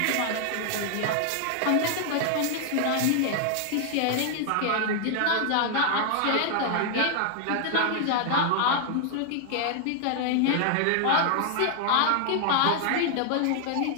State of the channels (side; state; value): both; different; correlation 0.00